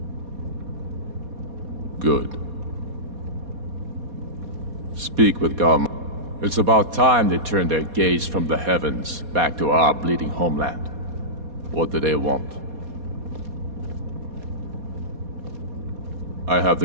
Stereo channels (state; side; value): late; left; 4.2 ms